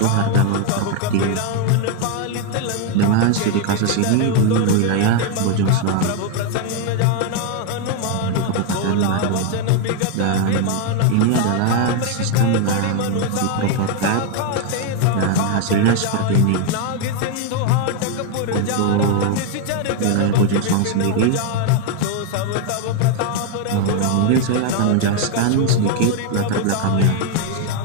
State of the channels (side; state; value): both; different; correlation 0.01